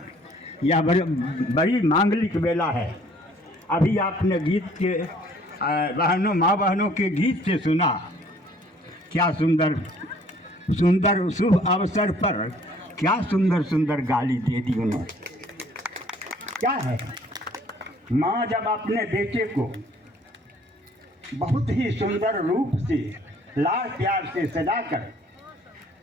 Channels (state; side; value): normal; both; correlation 0.57